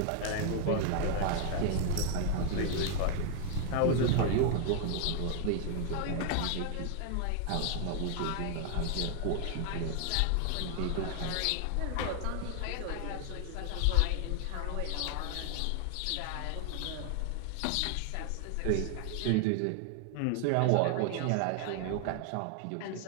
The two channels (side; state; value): both; different; correlation 0.00